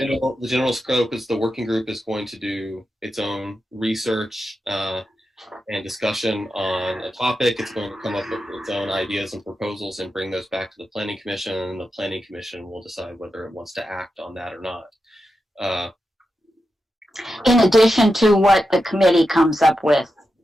general scope is the working group is going to do its own research and discussion on a topic. It's going to come up with its own ideas and proposals and bring those back to the Planning Commission, and the Planning Commission will decide whether it wants to act on that or not. In addition to what the committee comes up with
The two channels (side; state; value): both; normal; correlation 0.89